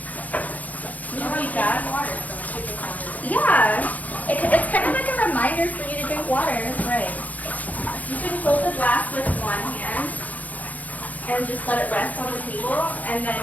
Water. yeah, it's kind of like a reminder for you to drink water. Right. You can hold the glass with one hand and just let it rest on the table and then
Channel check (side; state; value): right; late; 0.077 ms